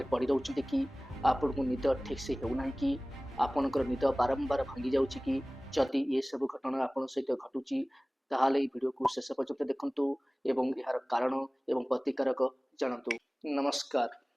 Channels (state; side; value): normal; both; correlation 0.98